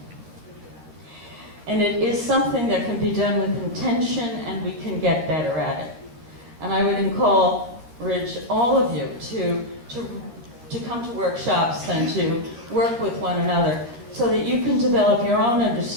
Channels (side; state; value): left; late; 12 ms